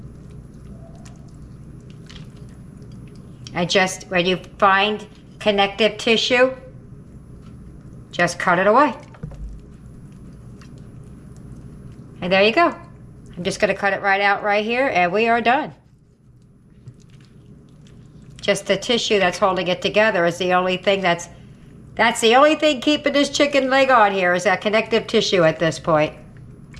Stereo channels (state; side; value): identical; both; correlation 1.00